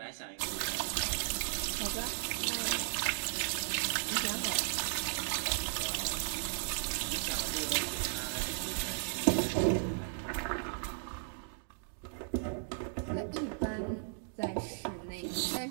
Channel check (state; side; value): silent; left; digital silence